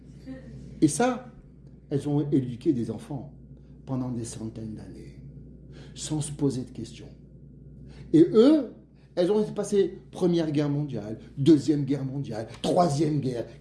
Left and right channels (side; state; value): both; identical; correlation 1.00